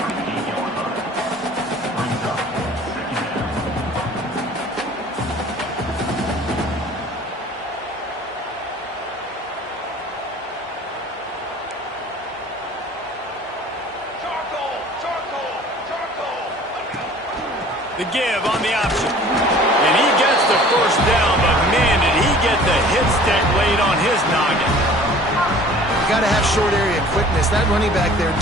The give on the option. And he gets the 1st down, but man, did he get the hit stick laid on his noggin. You got to have short area quickness. That running back there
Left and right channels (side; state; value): both; normal; correlation 0.48